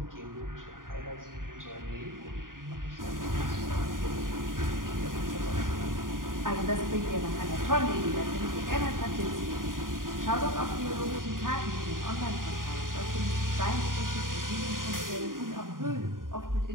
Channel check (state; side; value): late; left; 0.90 ms